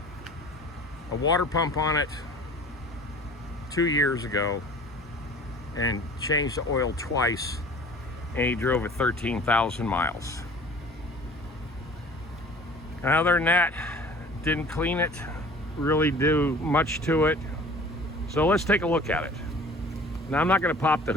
a water pump on it 2 years ago and changed the oil twice, and he drove it 13,000 miles. And other than that, didn't clean it, really do much to it. So let's take a look at it. Now, I'm not going to pop the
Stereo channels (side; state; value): both; normal; correlation 0.46